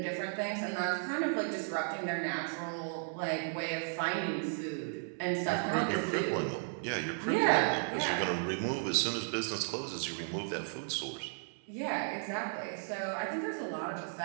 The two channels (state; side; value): silent; left; 55 dB below the other